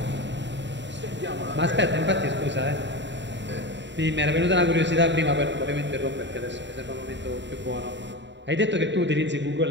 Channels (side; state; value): left; late; 0.52 ms